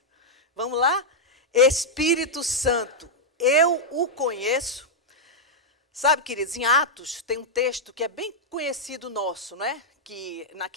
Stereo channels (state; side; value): normal; both; correlation -0.05